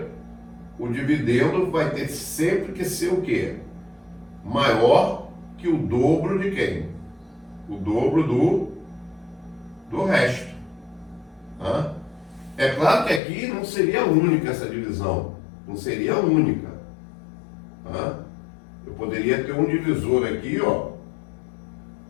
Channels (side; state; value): right; drops out; at 13.2 s